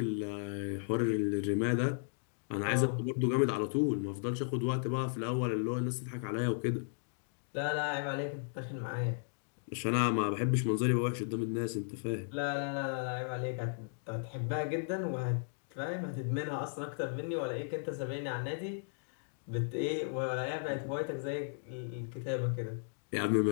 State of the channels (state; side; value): silent; right; digital silence